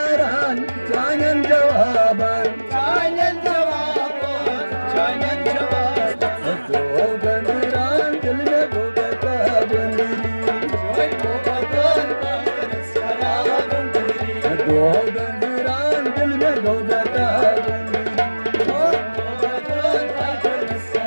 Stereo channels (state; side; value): inverted; both; correlation -1.00